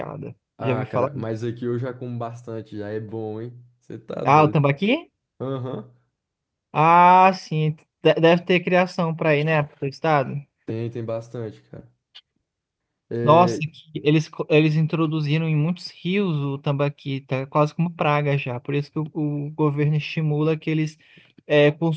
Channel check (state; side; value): identical; both; correlation 1.00